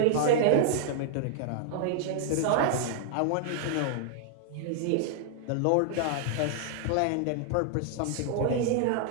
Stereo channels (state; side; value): different; both; correlation -0.01